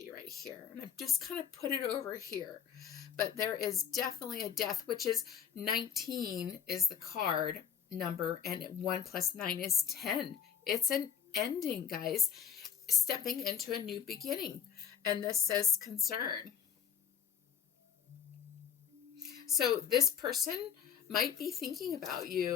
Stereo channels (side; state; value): right; quieter; 7.8 dB